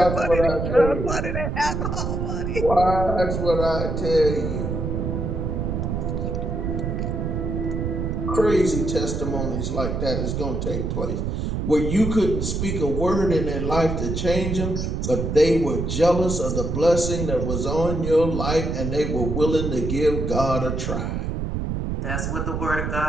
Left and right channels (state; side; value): noise; right; rumble, 2 dB below the sound